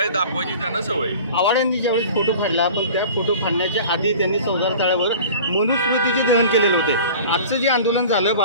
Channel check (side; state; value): both; inverted; correlation -0.41